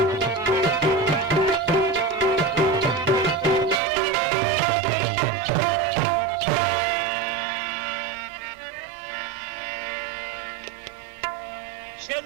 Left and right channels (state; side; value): drops out; left; at 3.8 s